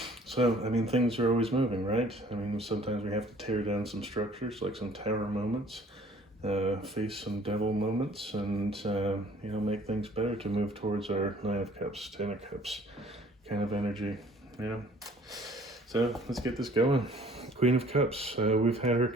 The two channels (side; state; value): both; normal; correlation 0.55